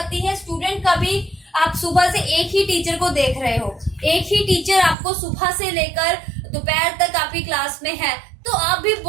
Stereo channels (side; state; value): left; drops out; at 5.0 s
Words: है स्टूडेंट का भी। आप सुबह से एक ही टीचर को देख रहे हो, एक ही टीचर आपको सुबह से लेकर दोपहर तक आपकी क्लास में है, तो आप भी